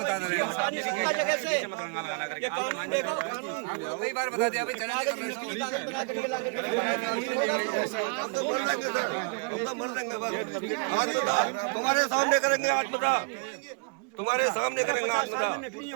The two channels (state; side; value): quieter; left; 35.8 dB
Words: रहे हैं। जगह से मत रंगा लगाना करके। ये कानून देखो, कानून कई बार बता दिया भाई, चला कागज बना करके ला के मर देंगे बस। आज बता, तुम्हारे सामने करेंगे, आज बता, तुम्हारे सामने करेंगे, आज बता। नकली